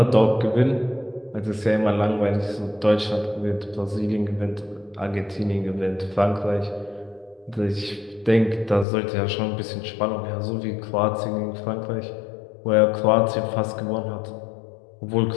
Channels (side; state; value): right; drops out; at 8.8 s